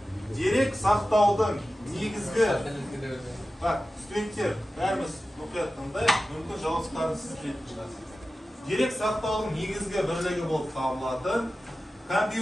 Дерек сақтаудың негізгі... Студенттер, бәріміз мұқият тыңдайық, мүмкін жауаптарын сіз білетін шығарсыз. Дерек сақтаудың негізгі бірлігі болып табылатын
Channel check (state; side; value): normal; both; correlation 0.94